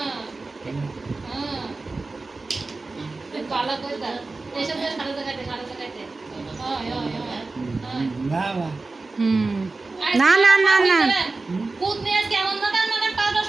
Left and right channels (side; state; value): left; quieter; 3.6 dB